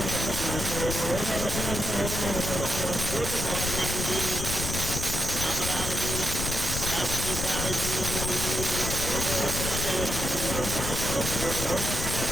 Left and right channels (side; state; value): left; noise; rumble, 4 dB below the sound